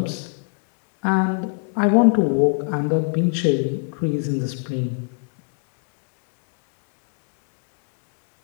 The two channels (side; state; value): right; silent; 59 dB below the other